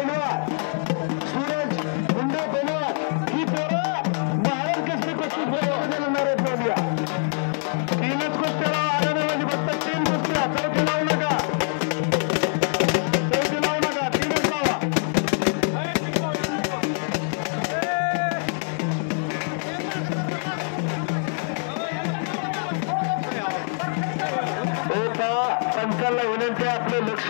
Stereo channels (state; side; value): silent; right; 56 dB below the other